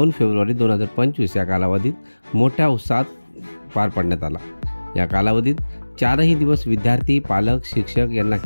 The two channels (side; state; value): both; inverted; correlation -1.00